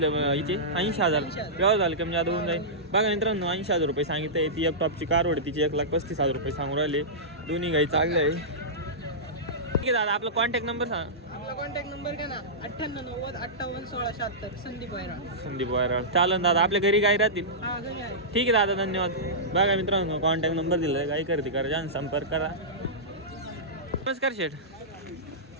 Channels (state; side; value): normal; both; correlation -0.16